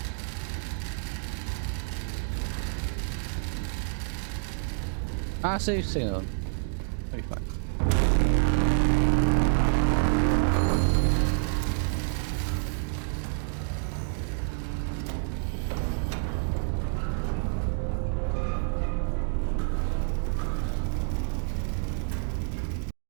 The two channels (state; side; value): silent; left; 59 dB below the other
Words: Save signal. That'll be fine.